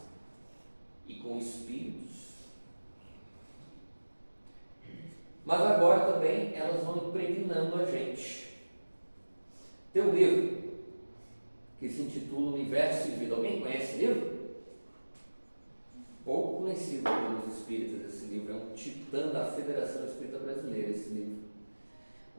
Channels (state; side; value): inverted; both; correlation -1.00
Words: e com espíritos. Mas agora também elas vão impregnando a gente. Tem um livro que se intitula Universo e Vida. Alguém conhece esse livro? Pouco conhecido pelos espíritas esse livro. É um titã da Federação Espírita Brasileira esse livro.